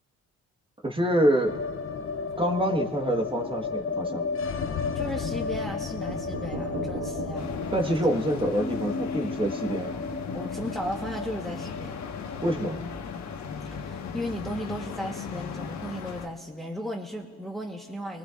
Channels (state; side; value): normal; both; correlation 0.50